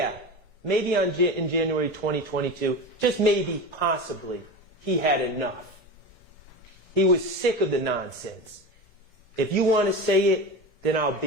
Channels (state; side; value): normal; both; correlation 0.26